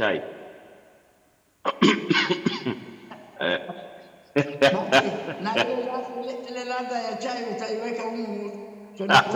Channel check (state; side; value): identical; both; correlation 1.00